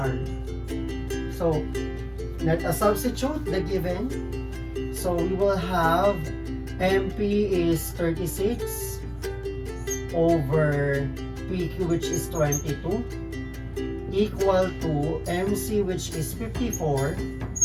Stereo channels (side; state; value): both; identical; correlation 1.00